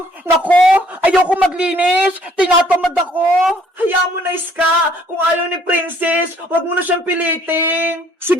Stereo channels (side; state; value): both; normal; correlation 0.61